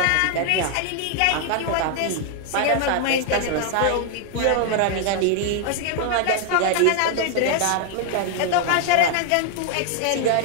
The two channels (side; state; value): both; different; correlation 0.00